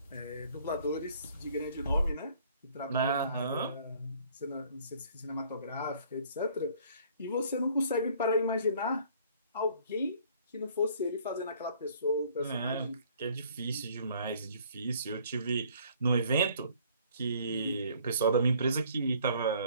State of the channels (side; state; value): both; inverted; correlation -0.58